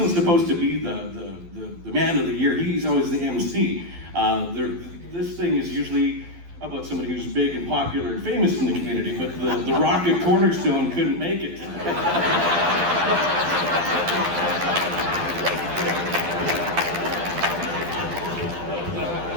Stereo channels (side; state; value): left; late; 12 ms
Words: supposed to be the man of the year. He's always the MC. This thing is usually about somebody who's big and popular and famous in the community, but the Rocket Cornerstone couldn't make it today.